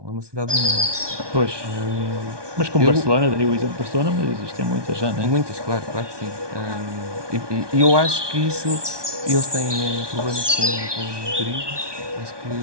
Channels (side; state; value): left; late; 1.2 ms